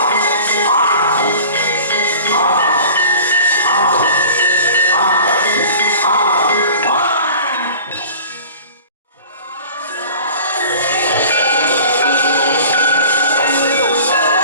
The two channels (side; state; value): both; inverted; correlation -0.42